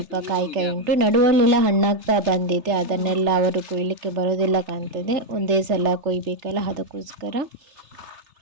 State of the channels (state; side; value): late; left; 3.3 ms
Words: ಕಾಯಿ ಕಾಯಿ ಉಂಟು. ನಡುವಲ್ಲೆಲ್ಲ ಹಣ್ಣಾಗ್ತಾ ಬಂದಿದೆ, ಅದನ್ನೆಲ್ಲ ಅವರು ಕೊಯ್ಲಿಕ್ಕೆ ಬರೋದಿಲ್ಲ ಕಾಣ್ತದೆ, ಒಂದೇ ಸಲ ಕೊಯ್ಬೇಕಲ್ಲ ಅದಕ್ಕೋಸ್ಕರ.